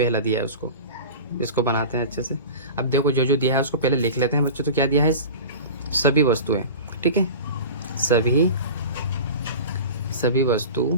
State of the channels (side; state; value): both; inverted; correlation -0.33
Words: दिया है उसको, इसको बनाते हैं अच्छे से। अब देखो जो जो दिया है उसको पहले लिख लेते हैं बच्चों। तो क्या दिया है, सभी वस्तुएं, ठीक है,